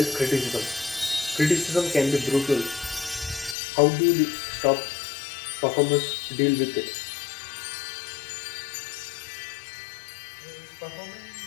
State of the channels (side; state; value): right; drops out; at 3.6 s